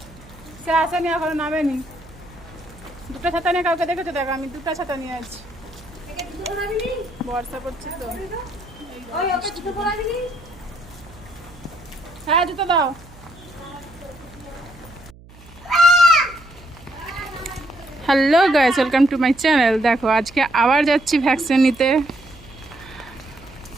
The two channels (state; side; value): noise; right; hum, 22 dB below the sound